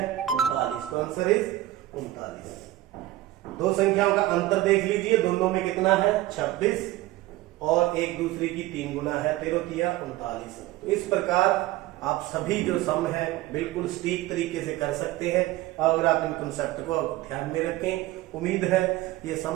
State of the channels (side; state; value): left; quieter; 16.1 dB